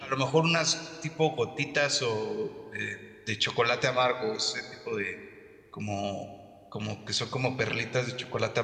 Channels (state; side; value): identical; both; correlation 1.00